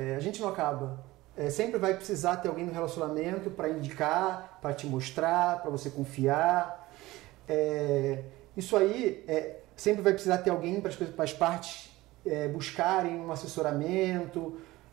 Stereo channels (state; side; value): quieter; left; 18.7 dB